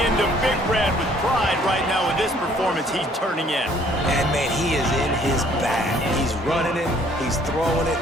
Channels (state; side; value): normal; both; correlation 0.60